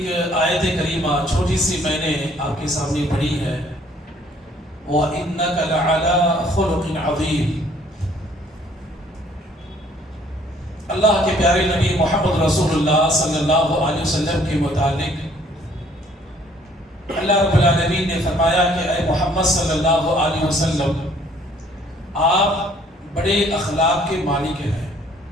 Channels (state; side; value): normal; both; correlation 0.60